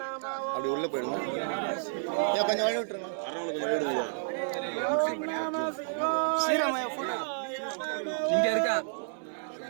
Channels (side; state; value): left; silent; digital silence